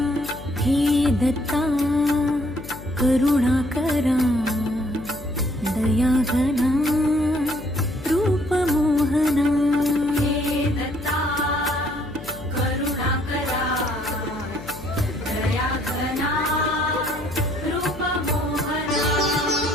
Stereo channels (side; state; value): left; noise; hum, 14 dB below the sound